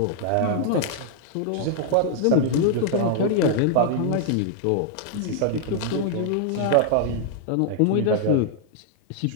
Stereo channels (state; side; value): different; both; correlation -0.01